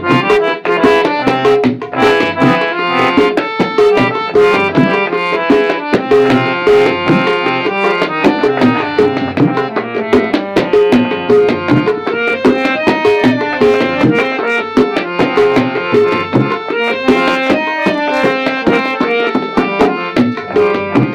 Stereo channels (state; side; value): identical; both; correlation 1.00